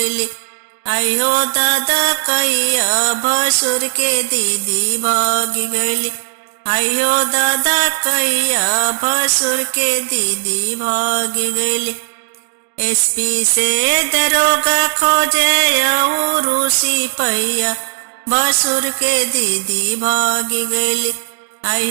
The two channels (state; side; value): silent; left; digital silence